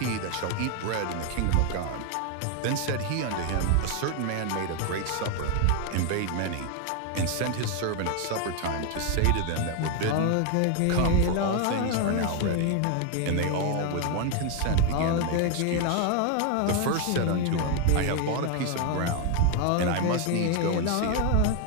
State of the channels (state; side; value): different; both; correlation 0.01